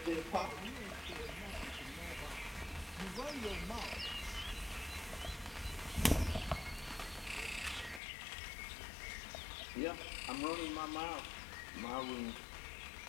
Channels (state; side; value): drops out; right; at 8.0 s